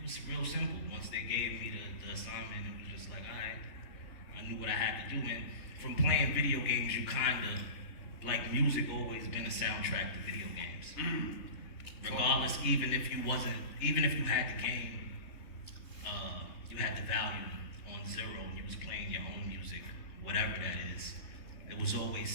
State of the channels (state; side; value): late; right; 3.3 ms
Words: was real simple. Once they gave me the assignment, it was just like, alright, I knew what I had to do, and from playing video games, you kinda, like music always been a soundtrack to video games. Regardless, even if you had the game, you had the value on zero and you was playing your own music, whatever that is, it was always